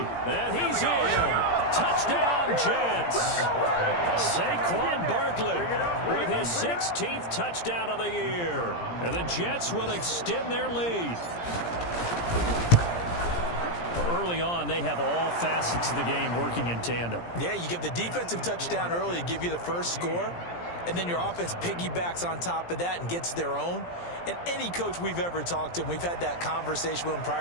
And he's in. Touchdown, Jets. Saquon Barkley with his 16th touchdown of the year. And the Jets will extend their lead. Early on, they have all facets of the game working in tandem. Yeah, you give the defensive touchdown early to give you the first score, and then your offense piggybacks on top of that and gets their own. And any coach we've ever talked to, and we've had that conversation with them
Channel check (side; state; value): right; late; 17 ms